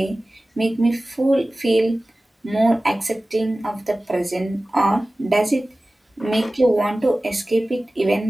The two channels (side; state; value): both; normal; correlation 0.97